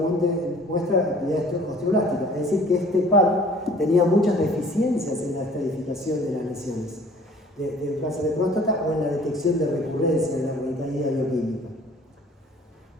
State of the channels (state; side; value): normal; both; correlation 0.52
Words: muestra actividad osteoblástica. Es decir, que este par tenía muchas deficiencias en la estadificación de las lesiones de cáncer de próstata o en la detección de recurrencia de la recaída bioquímica.